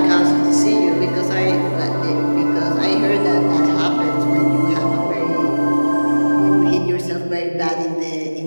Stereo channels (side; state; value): both; inverted; correlation -1.00